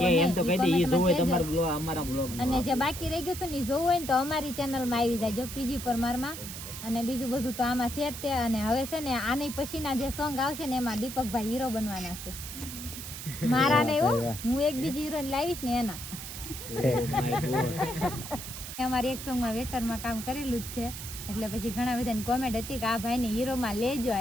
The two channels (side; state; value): right; noise; hiss, 9 dB below the sound